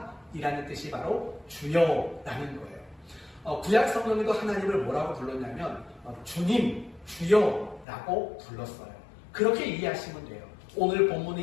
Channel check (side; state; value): right; drops out; at 7.9 s